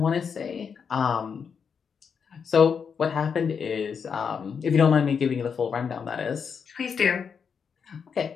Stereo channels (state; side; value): quieter; right; 6.5 dB